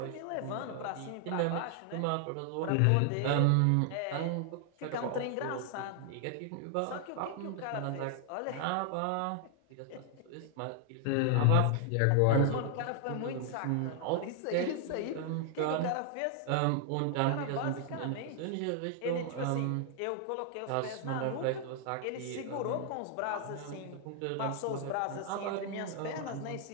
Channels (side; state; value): both; different; correlation 0.00